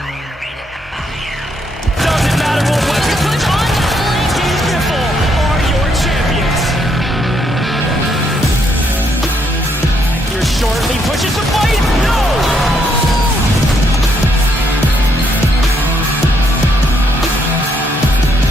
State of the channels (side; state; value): both; normal; correlation 0.74